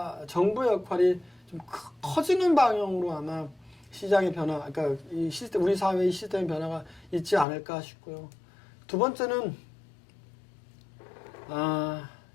정부의 역할이 좀 커지는 방향으로 아마 시장의 변화, 그러니까 이 시스템, 우리 사회의 시스템 변화가 있지 않을까 싶고요. 두 번째는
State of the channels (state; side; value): drops out; right; at 7.5 s